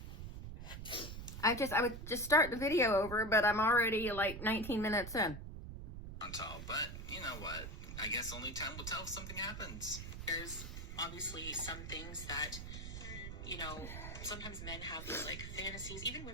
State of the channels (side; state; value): right; noise; rumble, 8 dB below the sound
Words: I would just start the video over, but I'm already like 19 minutes in. But you know what? I guess only time will tell if something happens. There's obviously some things that, you know, sometimes men have these like fantasies, even